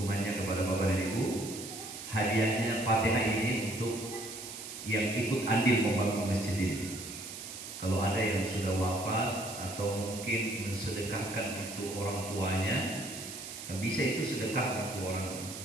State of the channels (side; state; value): right; noise; hiss, 10 dB below the sound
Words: kepada bapak dan ibu. Hadiahnya Fatihah ini untuk yang ikut andil membangun masjid ini. Kalau ada yang sudah wafat atau mungkin mensedekahkan untuk orang tuanya, bisa itu sedekah untuk orang